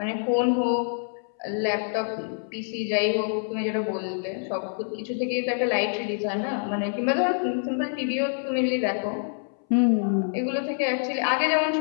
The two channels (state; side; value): silent; right; 61 dB below the other